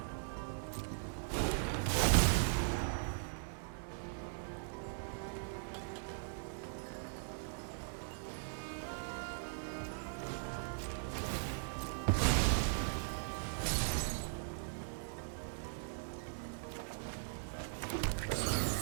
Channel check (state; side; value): silent; left; digital silence